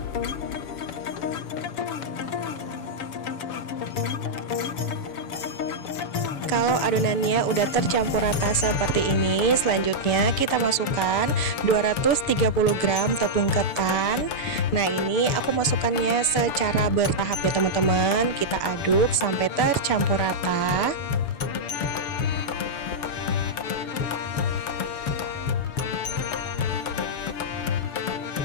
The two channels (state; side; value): late; right; 7.0 ms